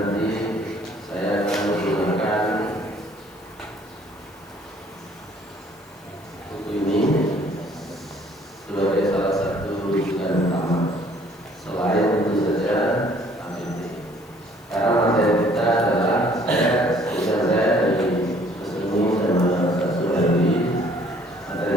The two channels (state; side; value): noise; left; hiss, 29 dB below the sound